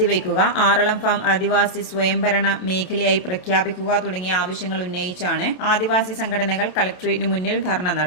ആറളം ഫാം ആദിവാസി സ്വയംഭരണ മേഖലയായി പ്രഖ്യാപിക്കുക തുടങ്ങിയ ആവശ്യങ്ങൾ ഉന്നയിച്ചാണ് ആദിവാസി സംഘടനകൾ കളക്ടറേറ്റിന് മുന്നിൽ ധർണ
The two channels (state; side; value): late; right; 27 ms